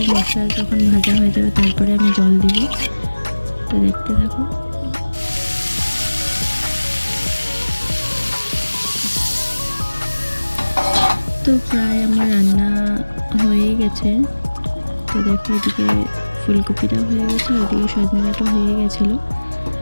মশলা যখন ভাজা হয়ে যাবে তারপরে আমি জল দিব। তো দেখতে থাকো। তো প্রায় আমার রান্না হয়ে গেছে। তো দেখো এদিকে ফুলকপিটা হয়ে গেছে, আর এদিকে সজনেটা হয়ে গেছিলো।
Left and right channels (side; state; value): both; inverted; correlation -1.00